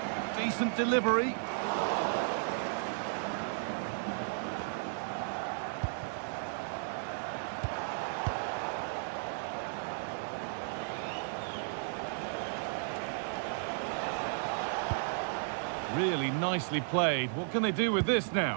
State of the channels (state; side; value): silent; left; digital silence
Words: Decent delivery. Really nicely played. What can they do with this